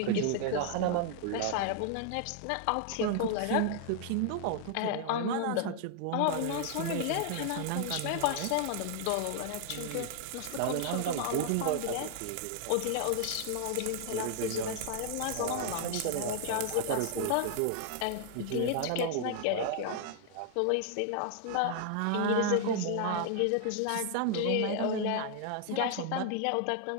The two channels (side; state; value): both; different; correlation 0.00